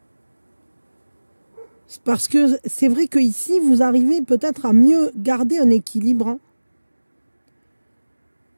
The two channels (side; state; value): both; inverted; correlation -1.00